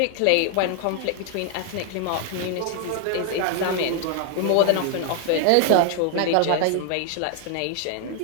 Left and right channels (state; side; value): different; both; correlation 0.00